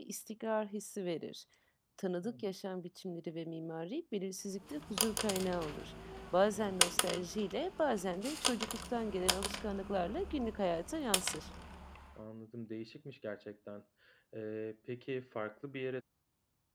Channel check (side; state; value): both; identical; correlation 1.00